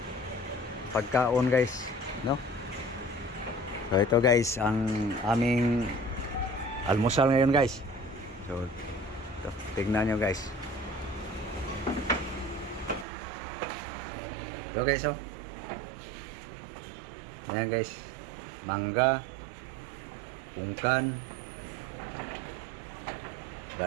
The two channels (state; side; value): drops out; left; at 13.1 s